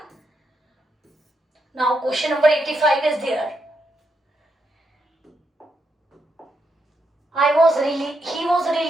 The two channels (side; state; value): both; normal; correlation 0.81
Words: Now question number 85 is there. He was